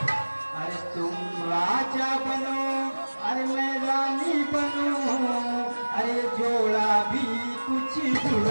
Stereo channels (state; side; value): inverted; both; correlation -1.00